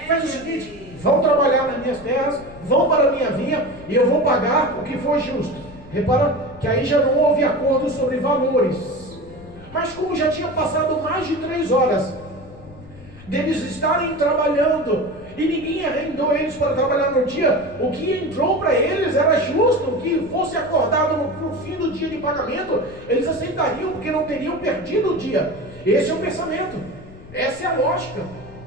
Faz o seguinte: vão trabalhar nas minhas terras, vão para a minha vinha e eu vou pagar o que for justo. Repara que aí já não houve acordo sobre valores. Mas como já tinha passado mais de 3 horas deles estarem trabalhando e ninguém arrendou eles para trabalhar no dia. O que entrou para eles era justo, que fosse acordado no fim do dia de pagamento, eles aceitariam, porque não teriam perdido o dia. Esse é o pensamento, essa é a lógica.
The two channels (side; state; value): left; noise; rumble, 19 dB below the sound